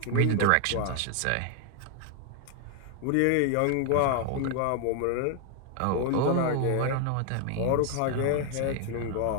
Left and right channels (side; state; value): both; different; correlation 0.00